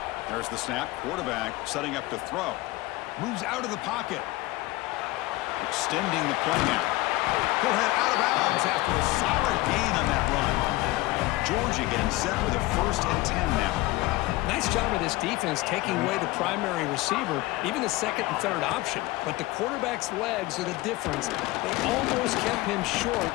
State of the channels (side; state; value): right; quieter; 19.8 dB